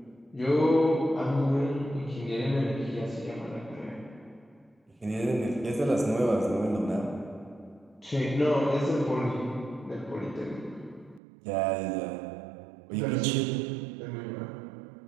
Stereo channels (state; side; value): drops out; left; at 11.2 s